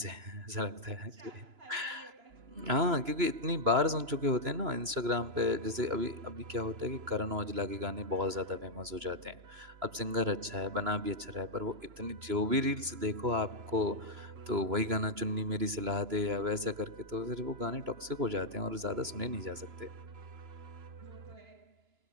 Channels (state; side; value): late; left; 3.0 ms